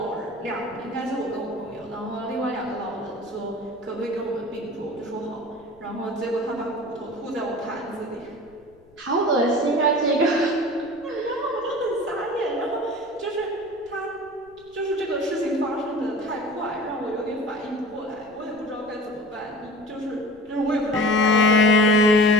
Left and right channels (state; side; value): noise; left; rumble, 30 dB below the sound